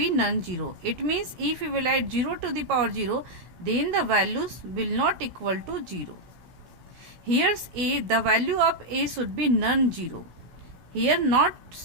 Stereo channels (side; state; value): left; late; 16 ms